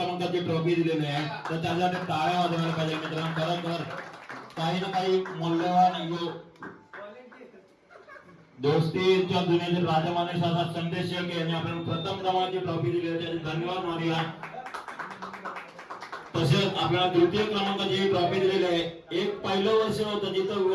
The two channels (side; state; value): both; identical; correlation 1.00